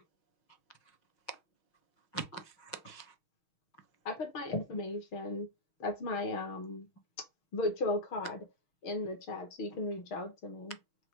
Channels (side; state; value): right; late; 6.3 ms